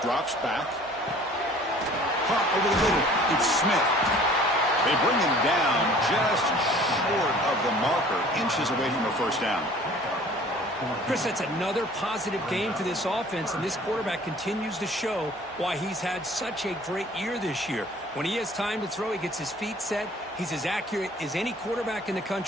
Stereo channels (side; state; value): both; normal; correlation 0.50